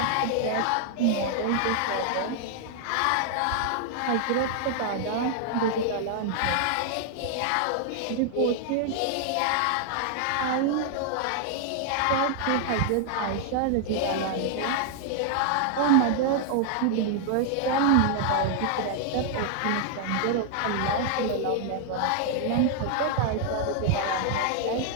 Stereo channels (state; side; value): different; both; correlation 0.00